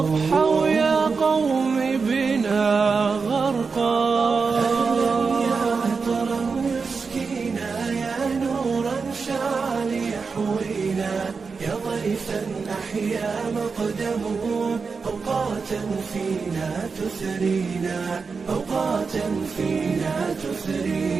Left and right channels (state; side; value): quieter; left; 4.9 dB